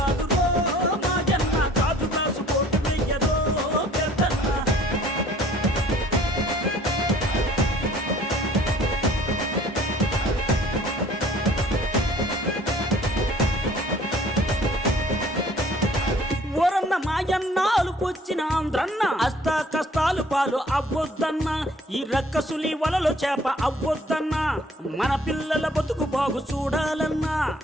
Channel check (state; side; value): normal; both; correlation 0.54